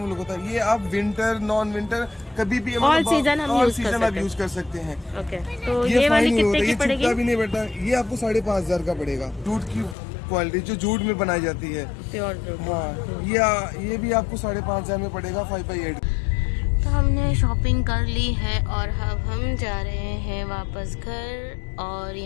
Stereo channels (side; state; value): right; drops out; at 10.0 s